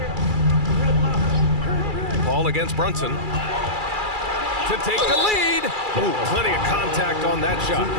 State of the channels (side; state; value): left; late; 2.3 ms